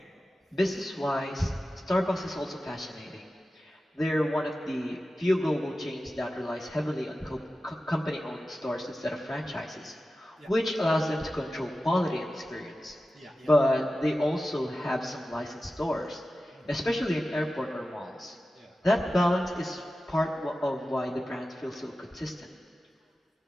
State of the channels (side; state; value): both; normal; correlation 0.94